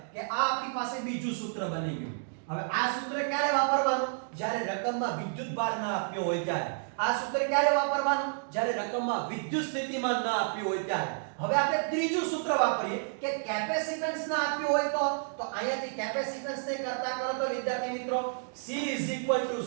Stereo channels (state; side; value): silent; left; digital silence